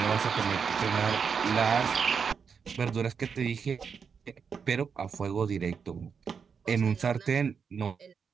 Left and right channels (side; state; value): left; quieter; 6.2 dB